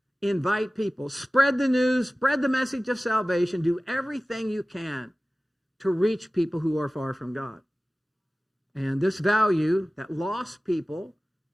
invite people, spread the news, spread the message of salvation, do everything you can to reach people who are far from God. And this value that lost people,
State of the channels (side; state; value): both; normal; correlation 0.97